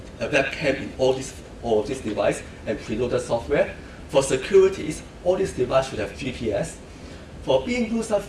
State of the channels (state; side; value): identical; both; correlation 1.00